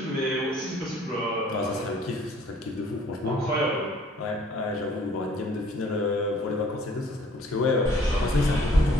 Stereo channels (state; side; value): normal; both; correlation 0.57